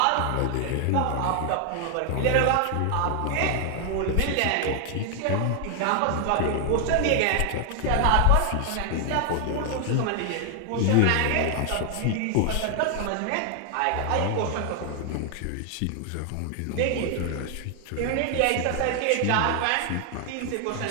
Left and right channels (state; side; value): different; both; correlation 0.00